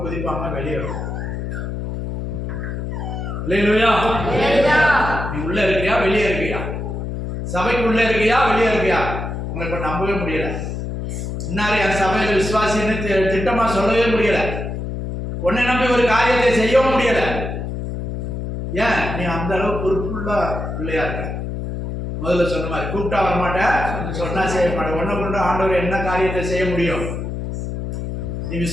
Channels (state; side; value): noise; left; hum, 5 dB below the sound